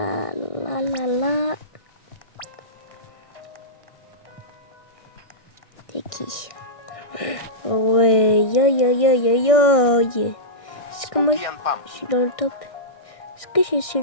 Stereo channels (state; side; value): late; right; 1.6 ms